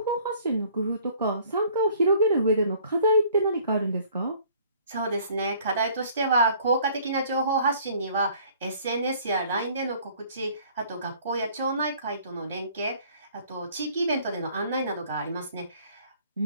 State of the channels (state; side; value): inverted; both; correlation -0.56